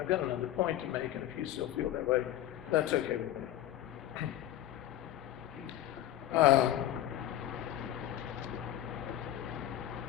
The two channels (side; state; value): right; quieter; 12.6 dB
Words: got another point to make, and if you still feel that way, that's okay with me.